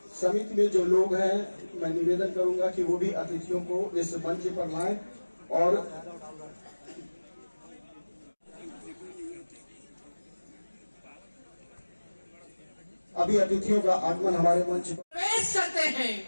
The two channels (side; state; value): both; inverted; correlation -1.00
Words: समिति में जो लोग हैं, मैं निवेदन करूंगा कि वो भी अतिथियों को इस मंच पर लाएं और अभी अतिथियों का आगमन हमारे मंच पर प्रवेश करते हैं।